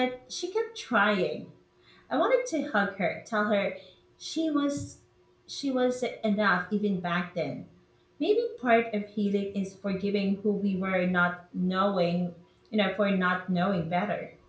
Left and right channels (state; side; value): identical; both; correlation 1.00